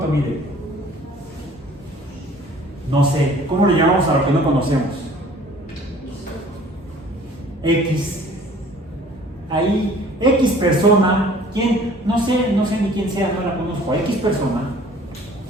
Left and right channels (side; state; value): both; normal; correlation 0.52